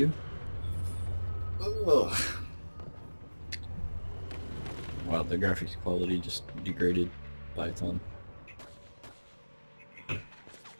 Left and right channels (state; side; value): inverted; both; correlation -1.00